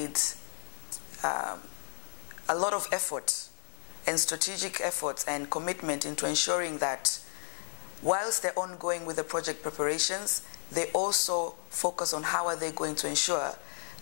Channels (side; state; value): right; silent; digital silence